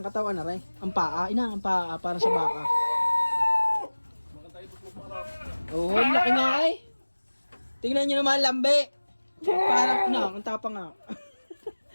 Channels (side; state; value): both; inverted; correlation -1.00